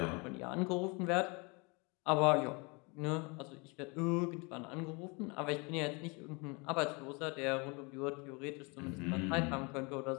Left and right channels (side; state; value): right; quieter; 30.0 dB